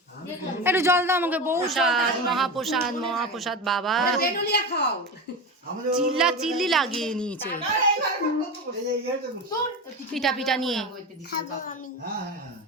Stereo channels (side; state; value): both; normal; correlation 0.24